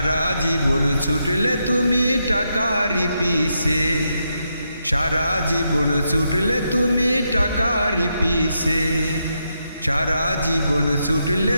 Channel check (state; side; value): inverted; both; correlation -0.82